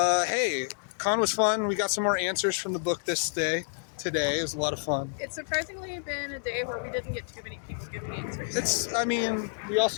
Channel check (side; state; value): right; silent; digital silence